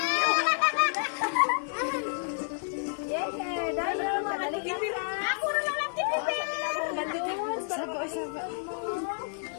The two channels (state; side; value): silent; right; digital silence